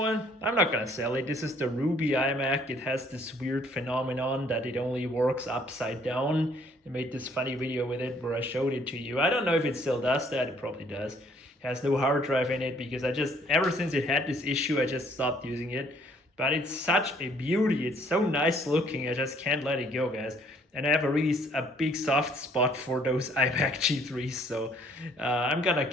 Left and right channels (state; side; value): normal; both; correlation 0.61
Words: I'm not gonna sell it. This is the Ruby iMac. It has this weird phenomenon that it only works upside down. I made this funny video with it where I showed it to you. I don't know if it still does that. It probably does. Has no hard drive in it, because ever since it had this issue, I just stopped using it. But it's such a beauty. It's so nice looking. I just can't let it go, guys. And I have a big soft spot for those iMac G3s, so I'm gonna